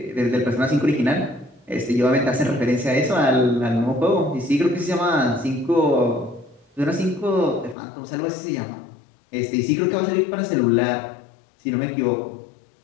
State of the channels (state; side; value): drops out; right; at 7.8 s